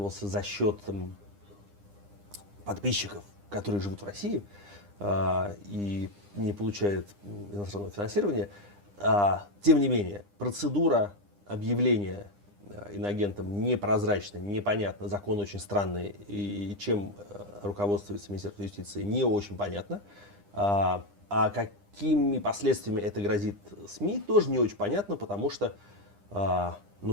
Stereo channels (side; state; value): left; late; 9.9 ms